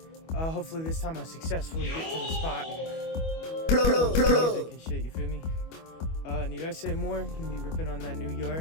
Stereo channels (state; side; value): late; right; 25 ms